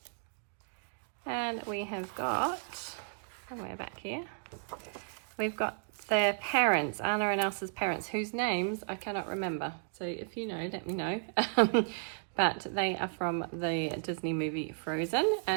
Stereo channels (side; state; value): left; silent; digital silence